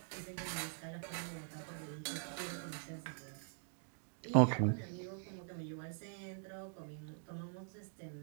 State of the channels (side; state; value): left; silent; digital silence